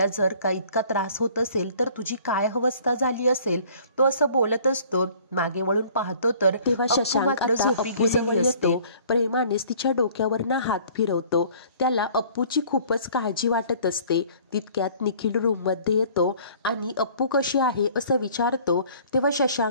जर का इतका त्रास होत असेल तर तुझी काय अवस्था झाली असेल. तो असं बोलत असतो. मागे वळून पाहतो तर तेव्हा शशांक झोपी गेलेली असते. प्रेमानेच तिच्या डोक्यावरनं हात फिरवतो. त्याला अप्पूची खूपच काळजी वाटत असते. तितक्यात निखिल रूममध्ये येतो आणि अप्पू कशी आहे असं विचारतो. तेव्हा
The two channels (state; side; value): inverted; both; correlation -0.53